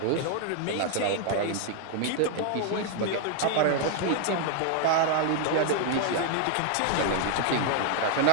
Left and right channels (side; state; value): both; different; correlation 0.00